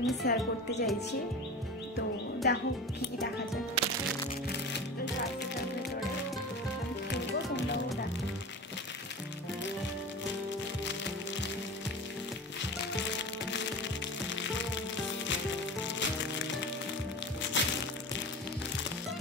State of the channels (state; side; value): normal; both; correlation 0.31